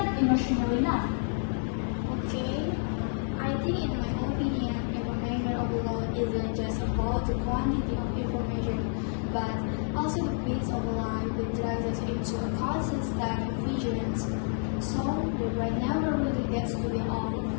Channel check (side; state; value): right; silent; 58 dB below the other